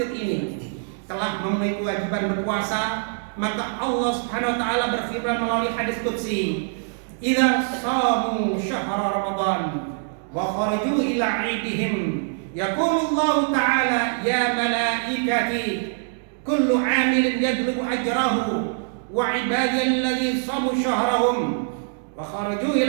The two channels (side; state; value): left; silent; digital silence